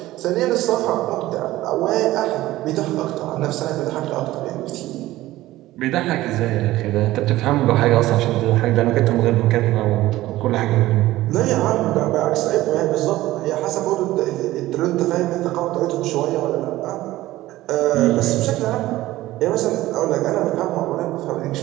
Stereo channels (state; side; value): quieter; left; 16.5 dB